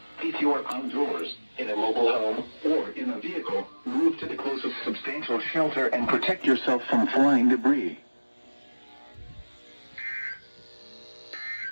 If you are outdoors, in a mobile home, or in a vehicle, move to the closest substantial shelter and protect yourself from flying debris.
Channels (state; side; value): inverted; both; correlation -1.00